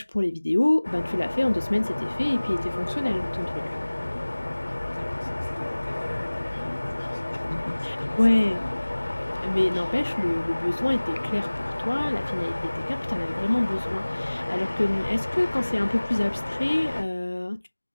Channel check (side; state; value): both; inverted; correlation -1.00